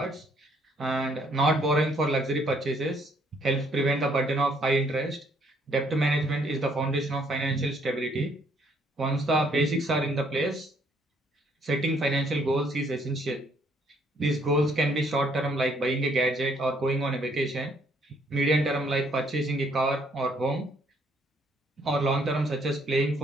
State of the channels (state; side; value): normal; both; correlation 0.67